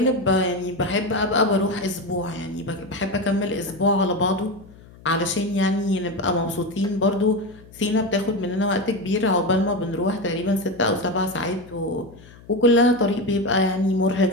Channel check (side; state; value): left; noise; hum, 22 dB below the sound